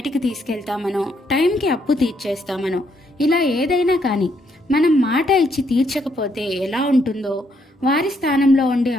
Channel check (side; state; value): both; normal; correlation 0.73